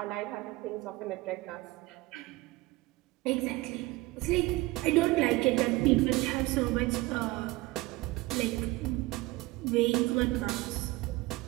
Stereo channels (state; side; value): quieter; left; 21.0 dB